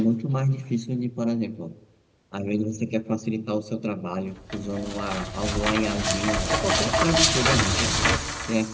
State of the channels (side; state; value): both; identical; correlation 1.00